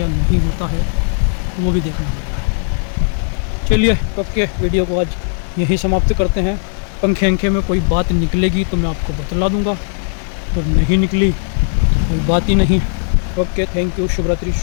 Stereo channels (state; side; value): silent; right; 68 dB below the other